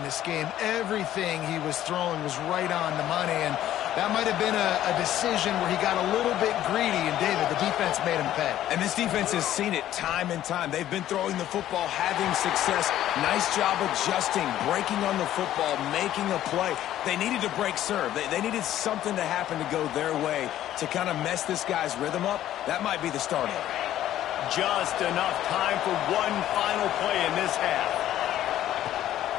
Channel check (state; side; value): quieter; right; 12.6 dB